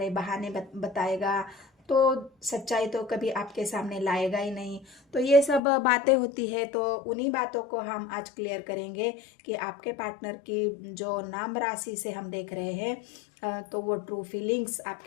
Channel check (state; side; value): drops out; right; at 5.6 s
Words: बहाने बताएगा, तो सच्चाई तो कभी आपके सामने लाएगा ही नहीं। तो ये सब बातें होती है। तो उन्हीं बातों को हम आज क्लियर करेंगे कि आपके पार्टनर की जो नाम राशि से हम देख रहे हैं, तो वो ट्रू फीलिंग्स